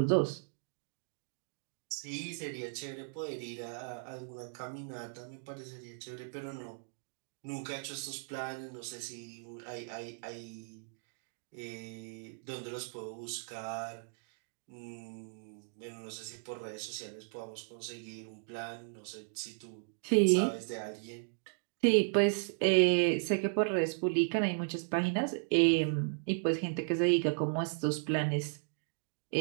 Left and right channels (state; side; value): silent; left; digital silence